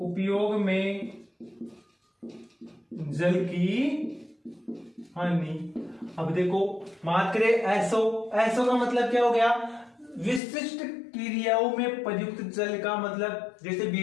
में जल की हानि। अब देखो बात करें एसओ, एसओ का मतलब क्या हो गया, विशिष्ट क्रियाओं में प्रयुक्त जल का मतलब जैसे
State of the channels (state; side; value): drops out; right; at 10.4 s